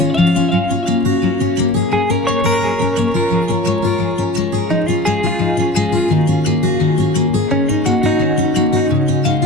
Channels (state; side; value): normal; both; correlation 0.39